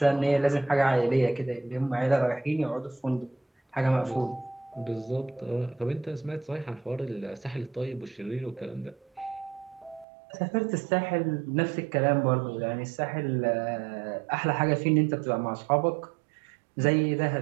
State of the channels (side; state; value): left; drops out; at 10.1 s